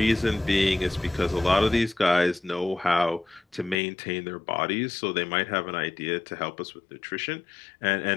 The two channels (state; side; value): drops out; right; at 3.8 s